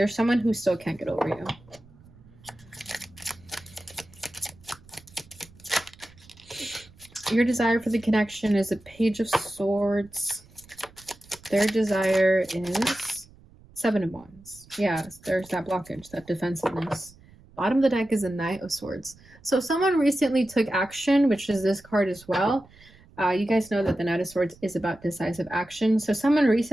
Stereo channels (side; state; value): right; noise; rumble, 25 dB below the sound